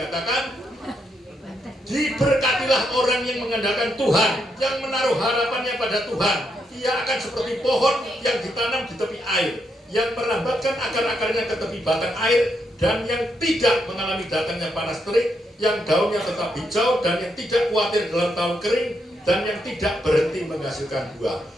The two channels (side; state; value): both; normal; correlation 0.79